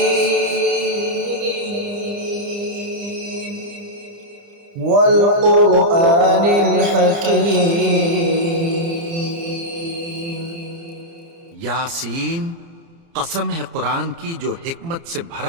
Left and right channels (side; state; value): left; late; 30 ms